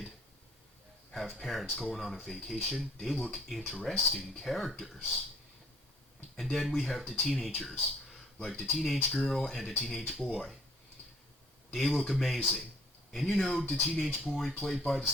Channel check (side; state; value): both; normal; correlation 0.60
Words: have parents going on a vacation, they look interesting characters. And then we have the teenagers, like the teenage girl and the teenage boy. They look amazing. And you know, the teenage boy played by the